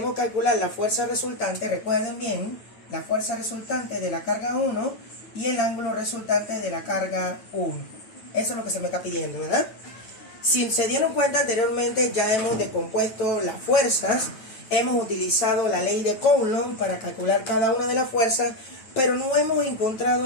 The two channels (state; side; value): late; right; 9.1 ms